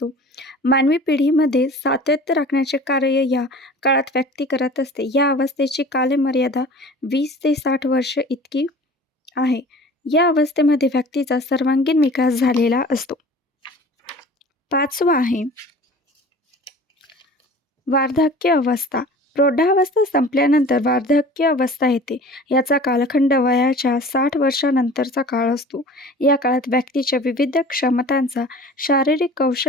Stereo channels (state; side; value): normal; both; correlation 0.43